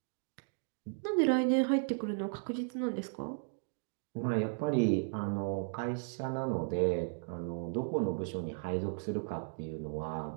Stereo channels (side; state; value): left; silent; digital silence